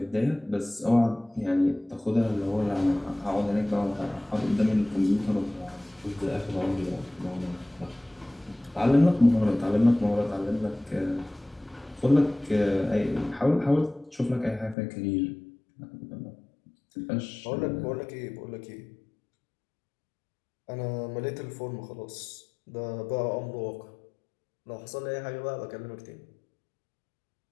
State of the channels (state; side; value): drops out; right; at 14.8 s